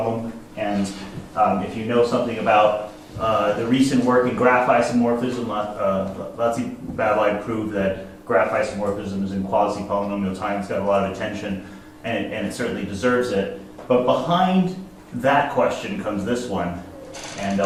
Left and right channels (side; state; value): both; identical; correlation 1.00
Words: And if you know something about the recent work in graph isomorphism, Latzi-Babelai proved that graph isomorphism is in quasi-polynomial time. It's got a lot of attention, and it certainly deserves it. But behind that question comes this one, and